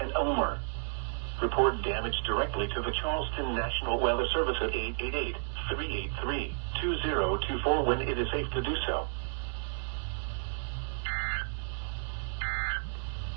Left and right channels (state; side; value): silent; left; digital silence